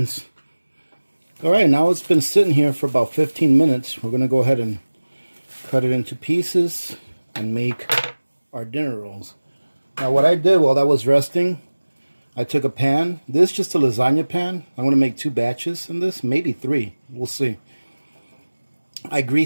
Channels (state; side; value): inverted; both; correlation -1.00